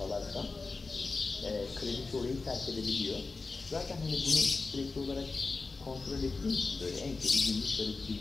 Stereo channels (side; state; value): right; quieter; 4.0 dB